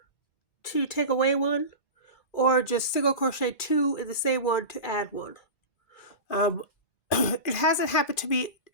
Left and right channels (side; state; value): right; late; 1.1 ms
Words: to take away 1, or just single crochet 2 in the same one to add 1. It hasn't happened to me